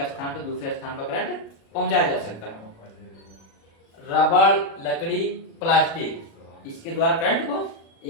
स्थान से दूसरे स्थान पर करंट पहुंचाया जा सकता है। रबड़, लकड़ी, प्लास्टिक, इसके द्वारा करंट को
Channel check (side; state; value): right; late; 36 ms